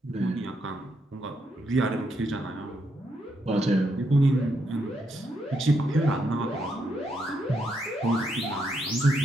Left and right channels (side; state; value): both; normal; correlation 0.78